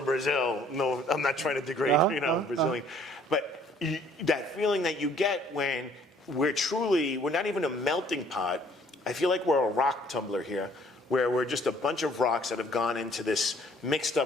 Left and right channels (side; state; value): both; normal; correlation 0.59